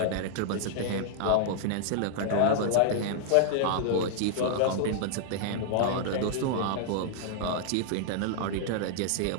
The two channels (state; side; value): different; both; correlation -0.01